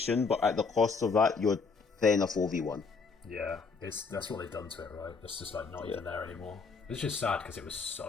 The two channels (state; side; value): quieter; right; 4.8 dB